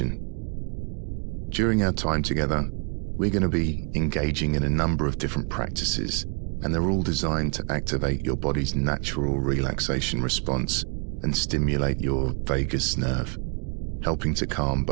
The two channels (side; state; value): left; quieter; 37.2 dB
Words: During our time together, we're going to be engaging in a number of different practices, and they're all designed to activate your body's natural relaxation response and stimulate your vagus nerve, helping to calm